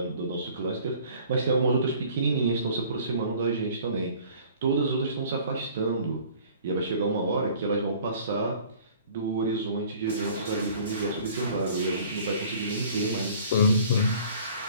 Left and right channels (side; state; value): both; inverted; correlation -0.50